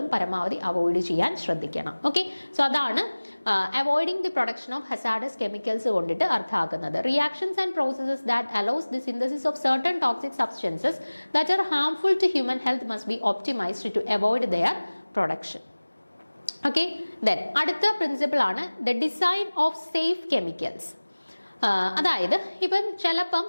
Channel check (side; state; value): both; inverted; correlation -1.00